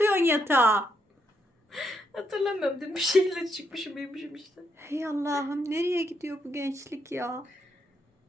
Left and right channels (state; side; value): normal; both; correlation 0.78